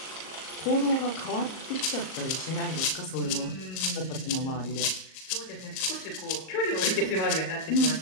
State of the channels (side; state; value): right; late; 38 ms